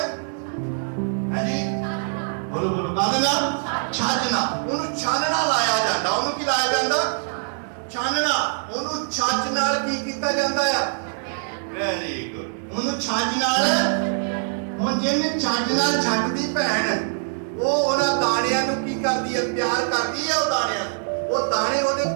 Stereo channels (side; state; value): left; silent; digital silence